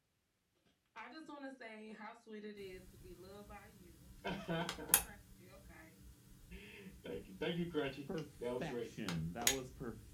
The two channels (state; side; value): identical; both; correlation 1.00